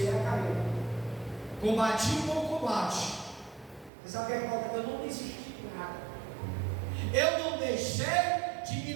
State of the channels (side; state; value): left; drops out; at 3.9 s